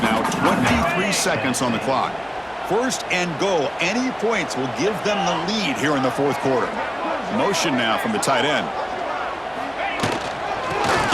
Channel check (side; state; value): both; identical; correlation 1.00